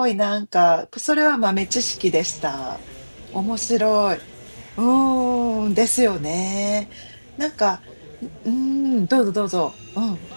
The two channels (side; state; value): both; inverted; correlation -1.00